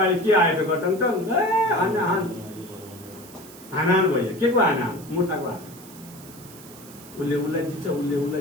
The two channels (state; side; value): noise; right; hiss, 19 dB below the sound